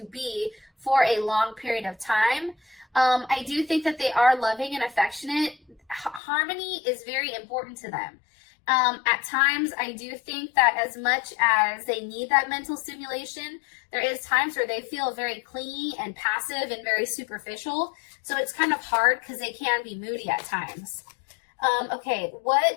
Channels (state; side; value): drops out; right; at 6.2 s